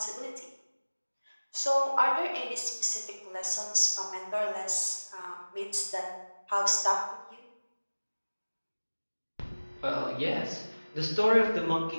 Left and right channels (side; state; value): both; inverted; correlation -1.00